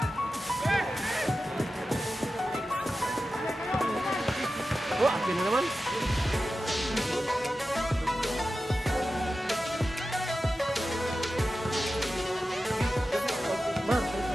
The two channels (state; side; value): normal; both; correlation 0.93